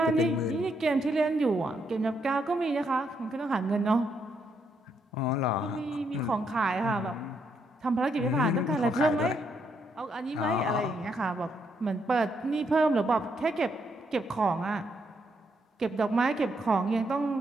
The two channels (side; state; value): both; normal; correlation 0.76